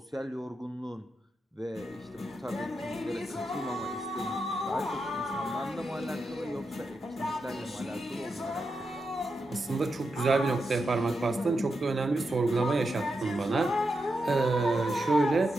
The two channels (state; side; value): normal; both; correlation 0.86